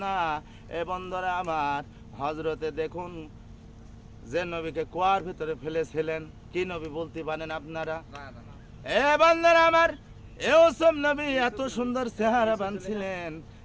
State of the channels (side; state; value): both; identical; correlation 1.00